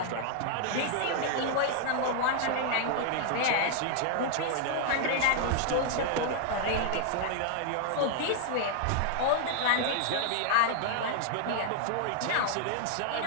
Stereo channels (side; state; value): both; different; correlation 0.00